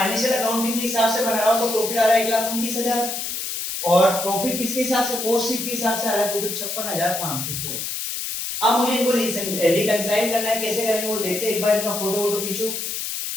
अकाउंटिंग के हिसाब से बना रहा हूं तो प्रॉफिट आ रहा है 1,29,000, और प्रॉफिट किसके हिसाब से, कॉस्ट शीट के हिसाब से आ रहा है प्रॉफिट 56,516। अब मुझे इनको रिकंसाइल करना है, कैसे करेंगे वो देखते हैं, एक बार इनका फोटो वोटो खींचो,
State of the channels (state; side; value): noise; left; hiss, 4 dB below the sound